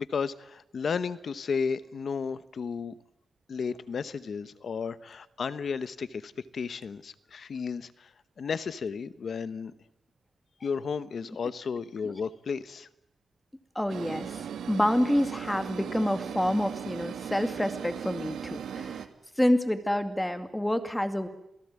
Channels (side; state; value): both; normal; correlation 0.94